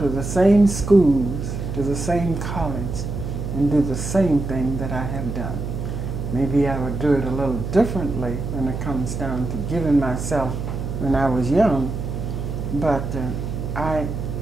the same schools, to the same college, and do the same thing that I have done. Maybe I would do it a little differently when it comes down to giving myself when I was young, but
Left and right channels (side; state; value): right; noise; hum, 5 dB below the sound